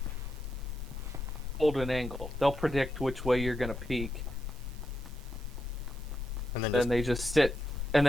Hold an angle. They'll predict which way you're gonna peek. And then Then just they just sit. And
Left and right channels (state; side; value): normal; both; correlation 0.85